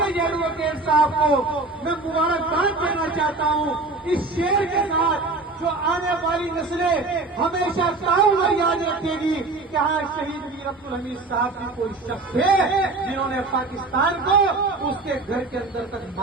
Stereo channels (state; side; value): quieter; left; 3.4 dB